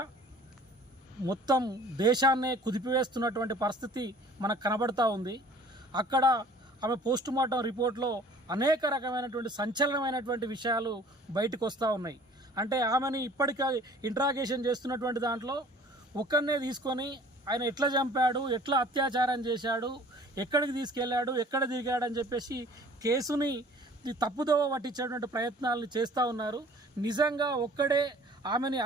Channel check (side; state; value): both; normal; correlation 0.50